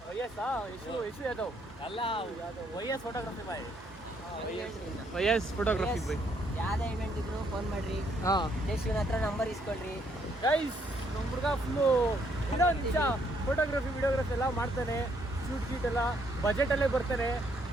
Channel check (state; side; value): normal; both; correlation 0.70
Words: ಯಶು ಯಾದವ್ ಅಲ್ಲ YS photography by. YS photography by. ಯಾವ್ದೇ ಇವೆಂಟ್ ಇದ್ರು ಫೋನ್ ಮಾಡ್ರಿ, ದೇಶಿನ ಹತ್ರ ನಂಬರ್ ಇಸ್ಕೊಳ್ರಿ ಗೈಸ್. ನಮ್ಮ ಹುಡುಗ ಫುಲ್ಲು ನಿಜ ಫೋಟೋಗ್ರಫಿ ವಿಡಿಯೋಗ್ರಫಿ ಎಲ್ಲ ಮಾಡ್ತಾನೆ. ಶೂಟ್ ಗೀಟ್ ಎಲ್ಲ ಬಜೆಟಲ್ಲೇ ಬರ್ತಾನೆ.